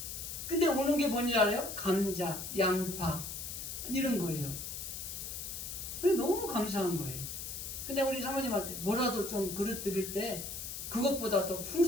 근데 오는 게 뭔지 알아요? 감자, 양파 이런 거예요. 너무 감사한 거예요. 근데 우리 사모님한테 뭐라도 좀 그릇 드릴 때 그것보다 더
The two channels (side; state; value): left; noise; hiss, 7 dB below the sound